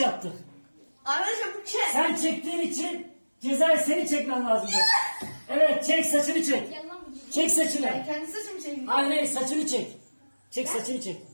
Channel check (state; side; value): inverted; both; correlation -1.00